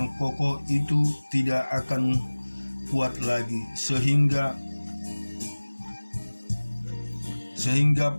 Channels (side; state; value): both; inverted; correlation -1.00